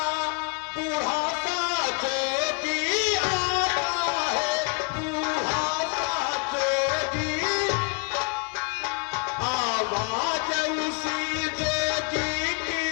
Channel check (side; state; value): right; quieter; 35.1 dB